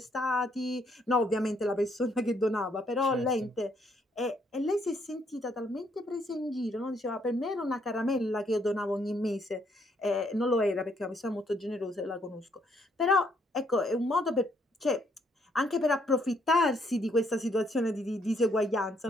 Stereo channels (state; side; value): normal; both; correlation 0.71